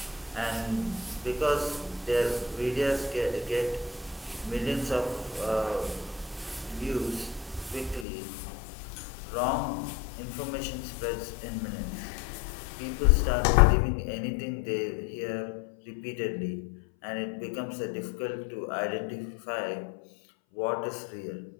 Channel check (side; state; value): right; drops out; at 8.1 s